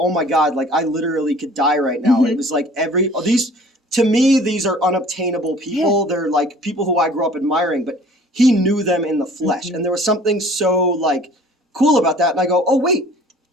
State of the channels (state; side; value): normal; both; correlation 0.50